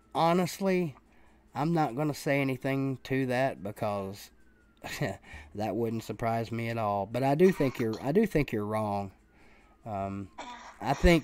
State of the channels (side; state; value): both; identical; correlation 1.00